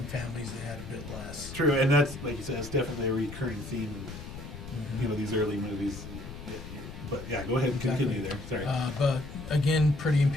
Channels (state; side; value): noise; left; rumble, 11 dB below the sound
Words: families that had a bit less. True, and that's, like you said, it's definitely a recurring theme in these early movies. But yeah, go ahead and continue there. Sorry. But again, Pretty in